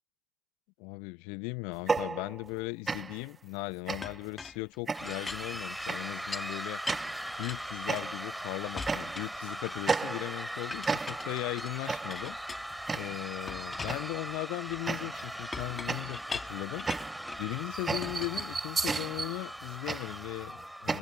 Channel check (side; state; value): both; normal; correlation 0.62